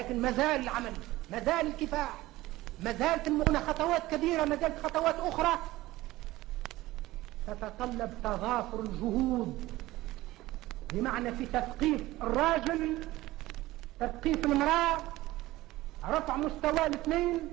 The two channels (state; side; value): quieter; left; 17.7 dB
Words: مازال العمل، مازال الكفاح، مازالت المغنى خطوات كبيرة، مازالت خطوات أخرى تتطلب تضافر الجهود، بمعنى في تثقيف الراجل، تثقيف المرأة، رفع مستوى الاثنين،